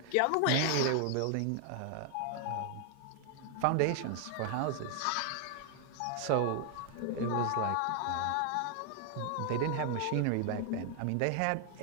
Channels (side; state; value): both; different; correlation 0.00